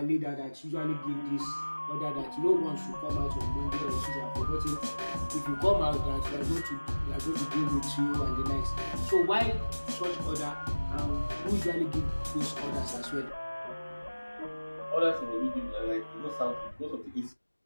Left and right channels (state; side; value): inverted; both; correlation -1.00